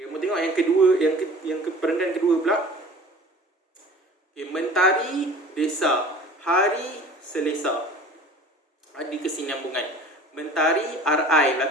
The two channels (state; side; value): normal; both; correlation 0.44